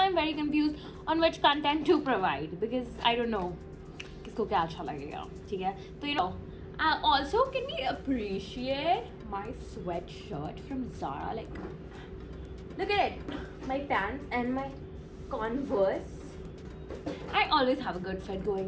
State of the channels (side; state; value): both; identical; correlation 1.00